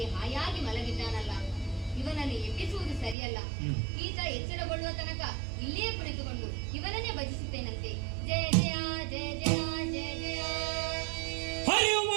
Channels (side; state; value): left; drops out; at 3.2 s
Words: ಹಾಯಾಗಿ ಮಲಗಿದ್ದಾನಲ್ಲ, ಇವನನ್ನು ಎಬ್ಬಿಸುವುದು ಸರಿಯಲ್ಲ. ಈತ ಎಚ್ಚರಗೊಳ್ಳುವ ತನಕ ಇಲ್ಲಿಯೇ ಕುಳಿತುಕೊಂಡು ಇವನನ್ನೇ ಭಜಿಸುತ್ತೇನಂತೆ. ಜಯ ಜಯ ಜಯ ಜಯ ಜಯ ಜಯ. ಹರಿಯು